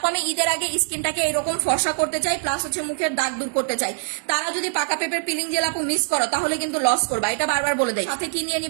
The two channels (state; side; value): silent; left; 58 dB below the other